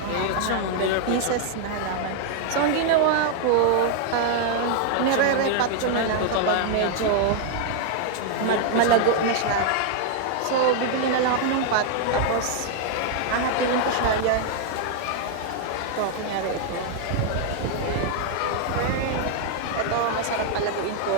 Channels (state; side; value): different; both; correlation 0.00